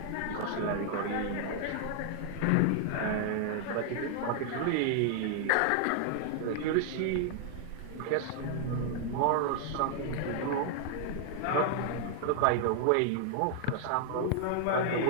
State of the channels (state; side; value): different; both; correlation 0.00